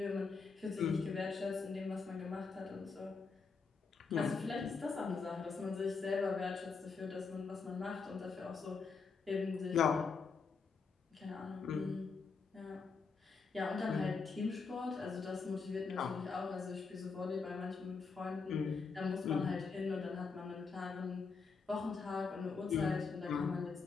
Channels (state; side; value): quieter; right; 4.9 dB